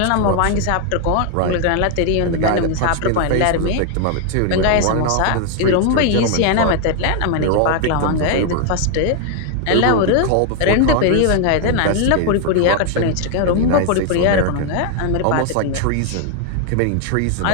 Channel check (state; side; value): different; both; correlation 0.00